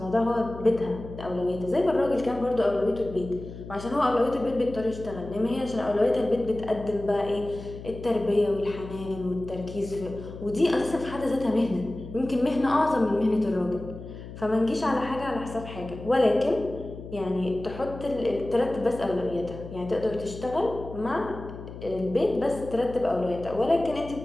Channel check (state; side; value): noise; left; hum, 12 dB below the sound